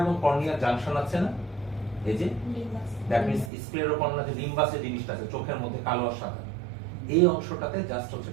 এবং কর্নিয়া জাংশন আছে না, এই যে দ্যাট মিন্স স্ক্লেরোকর্নিয়া যে লিম্বাসের জিনিসটা আছে চোখের মধ্যে কালো আর সাদা, এই অংশটাতে জাস্ট হচ্ছে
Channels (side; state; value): left; drops out; at 3.5 s